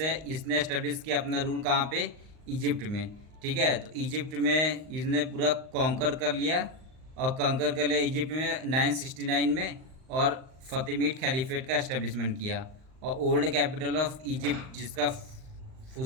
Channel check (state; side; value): late; left; 39 ms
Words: इसने एस्टेब्लिश किया अपना रूल कहाँ पे, इजिप्ट में। ठीक है, तो इजिप्ट में इसने पूरा कॉन्कर कर लिया, और कॉन्कर कर लिया इजिप्ट में 969 में, और फतिमिड खलीफेट का एस्टेब्लिशमेंट किया। और ओल्ड कैपिटल ऑफ इजिप्ट, जिसका